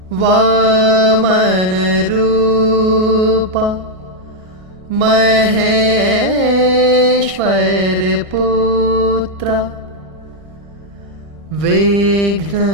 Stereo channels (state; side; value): late; left; 1.6 ms